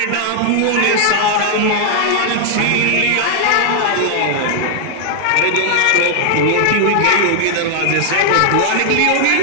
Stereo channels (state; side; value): different; both; correlation -0.01